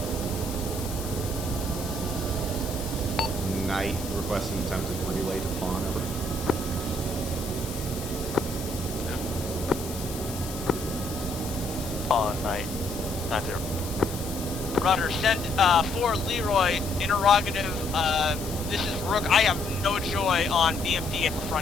Knight requesting attempted relay to pawn, over. On night. 90. Roger, send for Leroy, interrogative, this is Rook. I have no joy on BMP at the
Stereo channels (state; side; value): noise; left; hiss, 11 dB below the sound